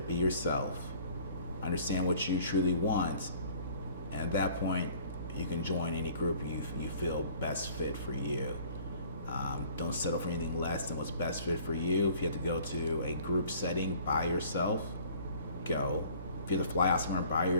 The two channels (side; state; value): both; inverted; correlation -0.53